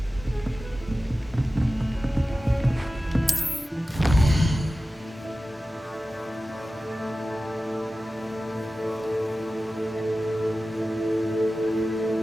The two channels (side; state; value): both; normal; correlation 0.95